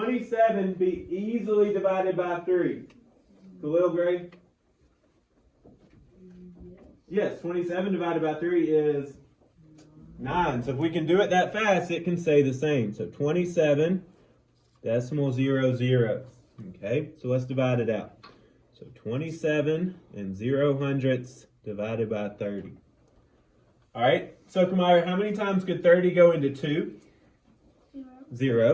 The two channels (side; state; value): both; identical; correlation 1.00